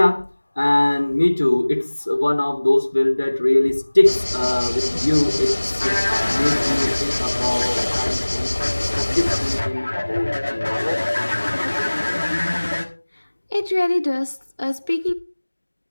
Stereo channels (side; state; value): both; inverted; correlation -1.00